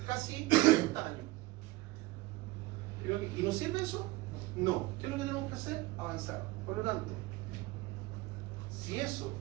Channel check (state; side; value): quieter; left; 20.3 dB